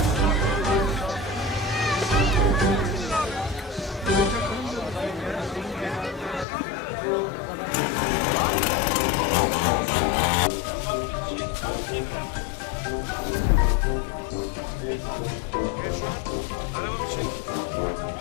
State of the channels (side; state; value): right; drops out; at 6.5 s